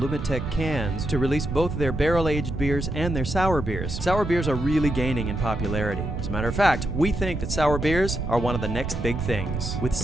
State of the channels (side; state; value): right; noise; rumble, 4 dB below the sound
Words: cans to release both their barrel-aged beers and their sour beers. Sour beers are really gaining in popularity. As a matter of fact, we think that sour beers are one of the next big things. With